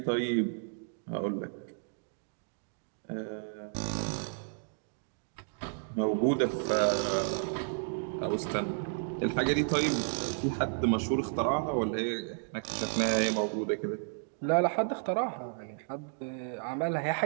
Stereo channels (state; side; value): silent; left; digital silence